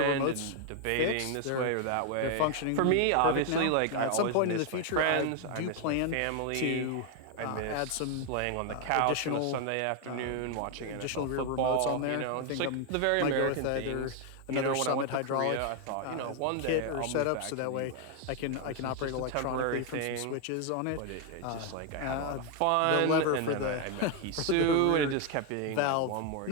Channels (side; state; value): both; different; correlation 0.01